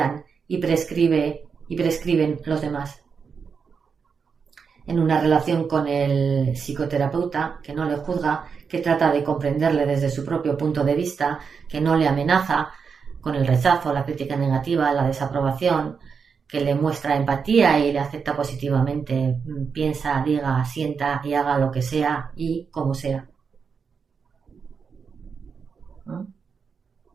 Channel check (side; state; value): left; quieter; 5.9 dB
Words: y prescriben los demás. En una relación con el psicoterapeuta, que no le juzga, que trata de comprenderle desde su propio punto de vista, que no le amenaza, con el rechazo, la crítica negativa, la desaprobación, que le muestra empatía y le acepta positivamente, piensa, diga, sienta y haga lo que sea y como sea. ¿No?